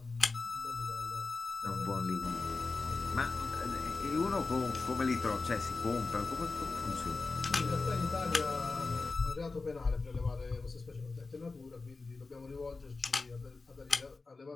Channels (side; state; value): right; quieter; 3.8 dB